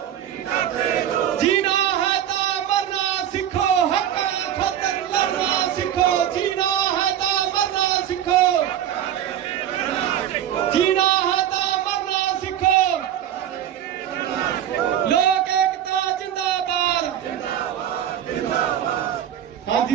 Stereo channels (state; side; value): quieter; left; 10.6 dB